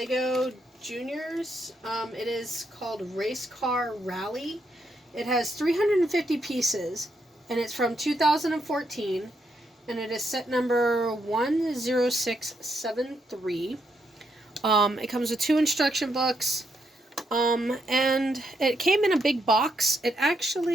Juniors. It is called Race Car Rally. It has 350 pieces and it's from 2014 and it is set number 10673. It comes with 2 instruction books. And it came in a big box.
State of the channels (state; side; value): normal; both; correlation 0.79